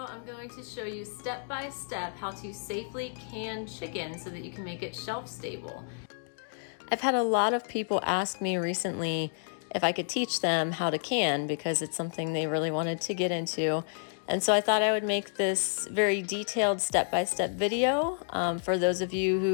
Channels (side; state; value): right; silent; digital silence